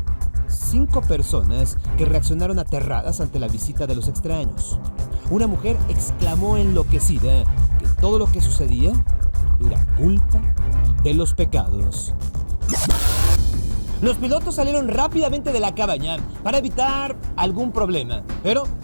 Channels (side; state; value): both; inverted; correlation -1.00